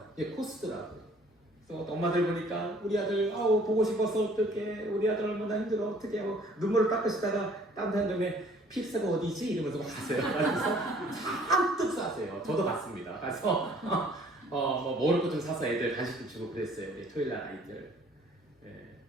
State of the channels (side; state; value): both; normal; correlation 0.56